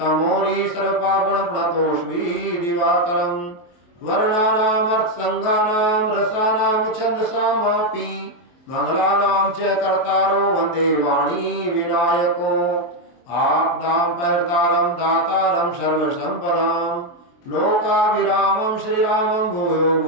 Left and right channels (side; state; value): right; late; 23 ms